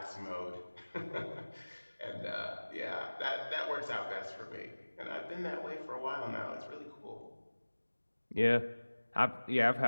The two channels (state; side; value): inverted; both; correlation -1.00